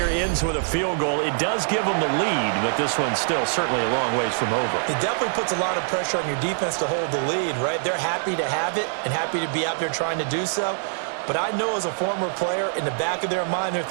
ends with a field goal. It does give them the lead, but this one's still certainly a long ways from over. It definitely puts a lot of pressure on your defense to hold the lead, right? They're happy to have it and happy to be out there trying to do so. But I know as a former player, in the back of their mind, they're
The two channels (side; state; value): left; silent; 63 dB below the other